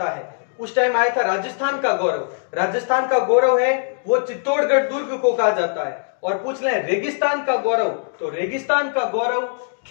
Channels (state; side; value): silent; right; digital silence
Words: है? उस टाइम आया था राजस्थान का गौरव। राजस्थान का गौरव है वो चित्तौड़गढ़ दुर्ग को कहा जाता है। और पूछ लें रेगिस्तान का गौरव, तो रेगिस्तान का गौरव